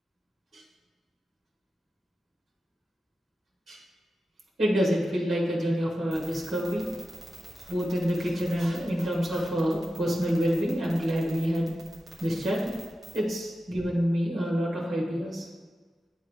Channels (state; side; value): normal; both; correlation 0.91